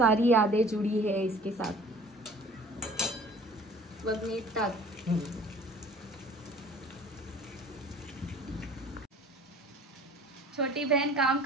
यादें जुड़ी है इसके साथ. बघ मीठ टाक. छोटी बहन काम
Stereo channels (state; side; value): normal; both; correlation 0.47